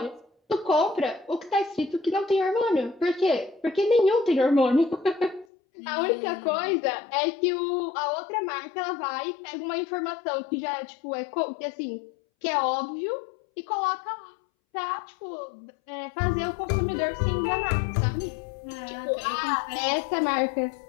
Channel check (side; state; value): right; drops out; at 5.5 s